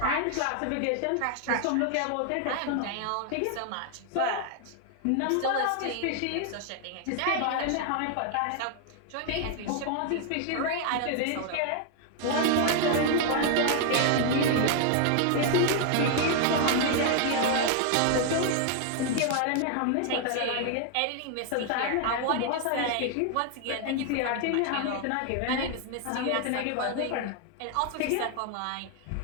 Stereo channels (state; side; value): different; both; correlation 0.00